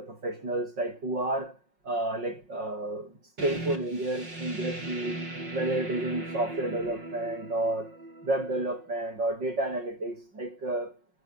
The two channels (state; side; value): late; left; 5.5 ms